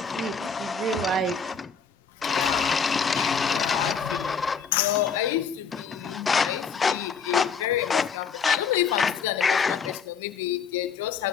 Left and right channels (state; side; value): quieter; right; 5.8 dB